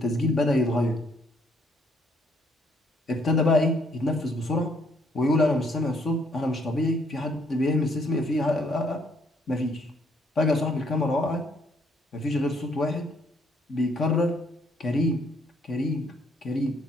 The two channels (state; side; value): normal; both; correlation 0.68